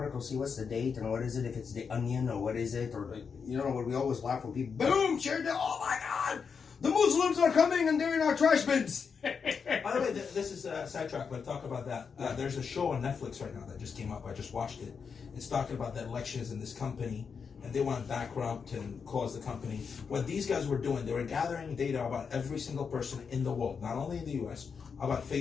see what's the date and what is it, if it's the Onion or what is it, or you know what we always laugh when people, boom, shared it, oh my God, the Muslims are coming and they're in our trash bins. By the way, this is a sidetrack, but talk about that. There's a show on Netflix right now that just came up. I just watched it. It's talking about the elections in this company, and they want to bankrupt and close the company. What these guys were doing, they were gathering data about every single person in the world, not only in the US, about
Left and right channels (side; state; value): right; quieter; 6.0 dB